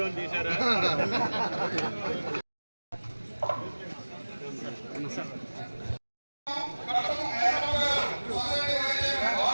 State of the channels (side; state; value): both; inverted; correlation -1.00